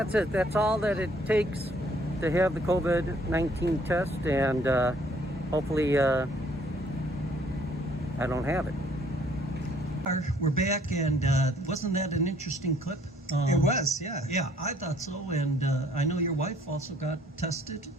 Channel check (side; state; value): both; normal; correlation 0.62